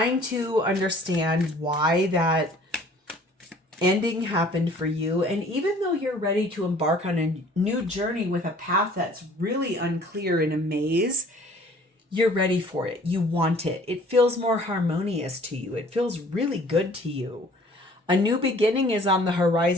to understand why that ending happened for you. And even though you're ready to embark on a new journey with a path that's really unclear in a maze, you're ready for it. You want it. It feels more harmonious to you. It feels really good to you. A new beginning is on the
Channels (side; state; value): both; normal; correlation 0.53